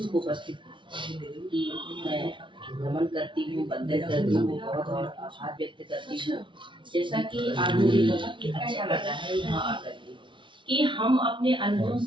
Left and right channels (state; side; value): late; left; 0.24 ms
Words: को उपस्थित की मैं नमन करती हूँ, वंदन करती हूँ, बहुत और आभार व्यक्त करती हूँ। जैसा कि आज मुझे बहुत अच्छा लगा है यहाँ आकर के कि हम अपने अंशों